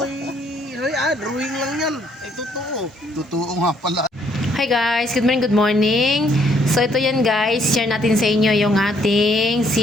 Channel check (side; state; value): both; normal; correlation 0.67